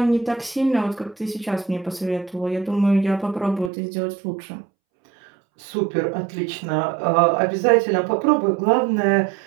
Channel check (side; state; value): left; drops out; at 3.7 s